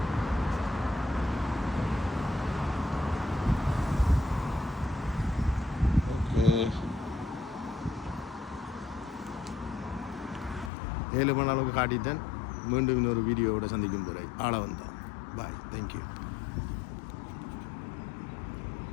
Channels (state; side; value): drops out; right; at 10.7 s